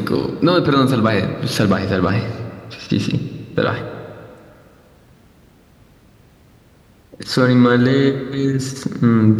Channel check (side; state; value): both; identical; correlation 1.00